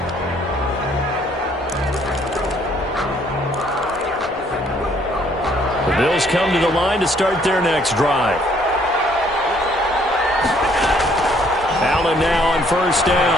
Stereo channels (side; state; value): both; normal; correlation 0.64